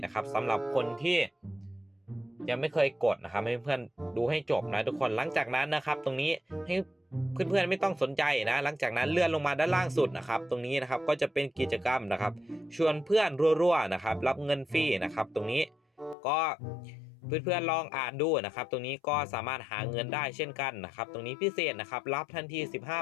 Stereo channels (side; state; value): right; drops out; at 16.2 s